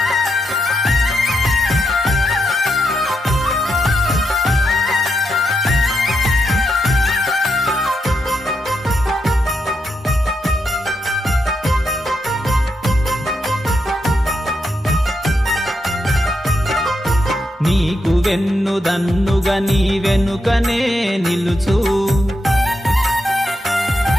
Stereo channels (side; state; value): both; normal; correlation 0.83